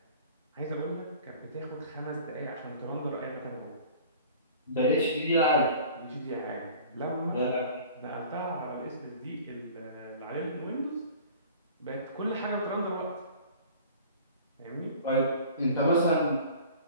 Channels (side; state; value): both; inverted; correlation -0.45